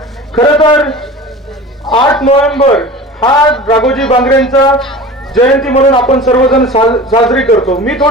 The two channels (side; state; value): both; normal; correlation 0.36